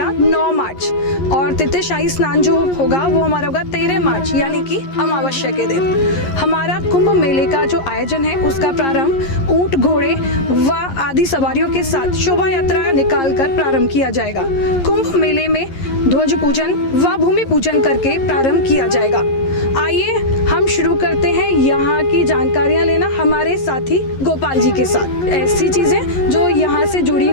9 मार्च और तृतीय शाही स्नान जो होगा वो हमारा होगा 13 मार्च यानी कि अमावस्या के दिन। हमारा कुंभ मेले का जो आयोजन है उसका प्रारंभ ऊंट, घोड़े व आदि सवारियों के साथ शोभा यात्रा निकाल कर प्रारंभ किया जाएगा। कुंभ मेले में ध्वज पूजन व भूमि पूजन करके प्रारंभ किया जाएगा। आइए हम शुरू करते हैं यहाँ की जानकारियाँ लेना हमारे साथी गोपाल जी के साथ। ऐसी चीज़ें जो यहाँ से जुड़ी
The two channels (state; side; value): late; right; 11 ms